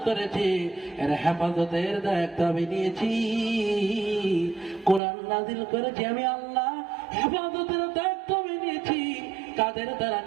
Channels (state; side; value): drops out; left; at 5.0 s